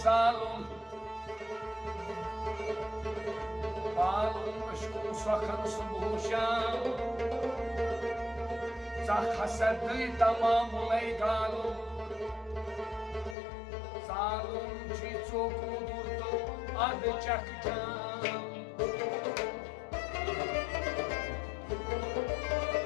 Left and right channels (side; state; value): right; drops out; at 13.4 s